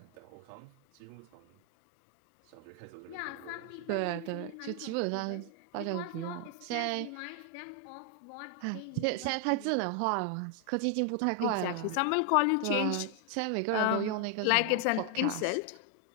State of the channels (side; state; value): both; different; correlation 0.00